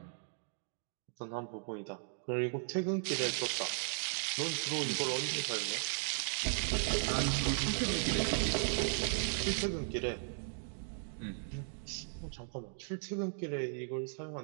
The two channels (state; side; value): silent; left; digital silence